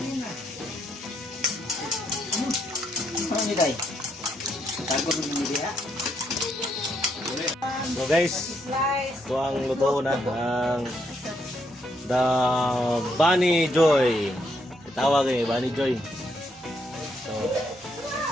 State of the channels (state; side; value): normal; both; correlation 0.76